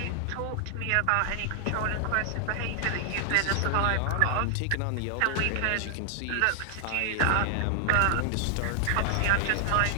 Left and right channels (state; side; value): different; both; correlation 0.00